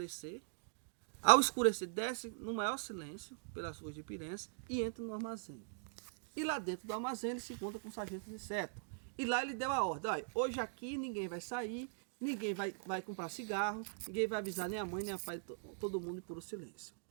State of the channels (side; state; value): left; silent; digital silence